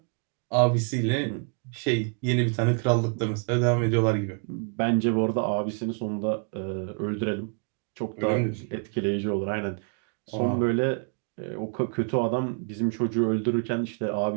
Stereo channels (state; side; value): quieter; left; 38.4 dB